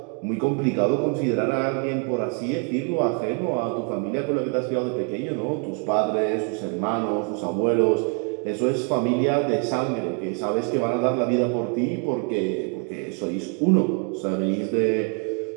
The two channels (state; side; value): quieter; left; 37.0 dB